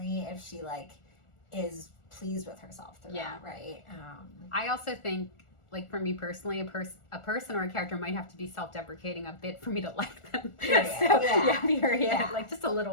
if she like is pleased with herself throughout, right? I also think, like, for me personally, a person or a character might have to be self-deprecating a bit for me to like them. Period. Like, just a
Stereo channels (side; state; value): right; late; 1.4 ms